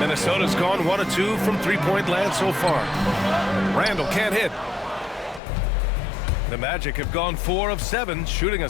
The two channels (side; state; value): right; drops out; at 5.4 s